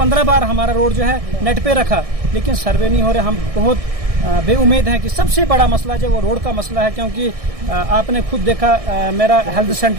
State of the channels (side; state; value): left; late; 1.6 ms